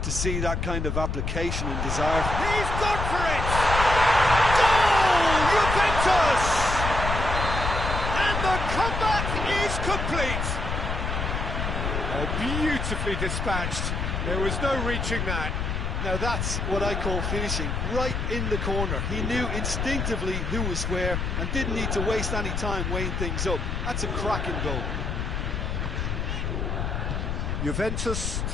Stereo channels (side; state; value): left; noise; rumble, 2 dB below the sound